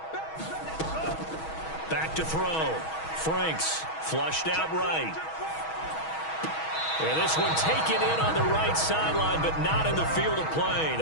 Back to throw. Franks flushed out right. And this one taken in on the right sideline, but not in the field of play.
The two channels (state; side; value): late; right; 6.2 ms